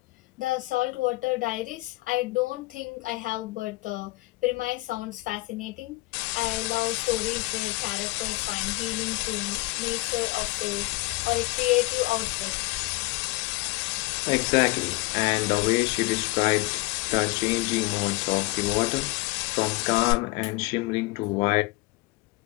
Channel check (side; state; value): right; quieter; 22.4 dB